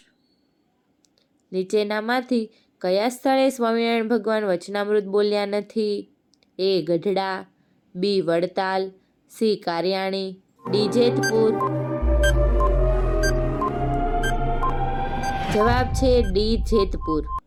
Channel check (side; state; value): both; identical; correlation 1.00